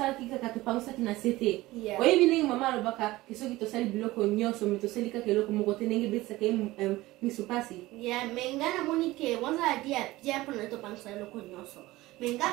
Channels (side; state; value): left; quieter; 18.4 dB